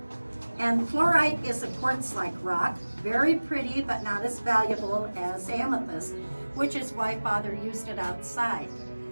And fluorite is a quartz-like rock, very pretty but not as valuable as amethyst, which is why Father used it outside.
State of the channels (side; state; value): both; inverted; correlation -1.00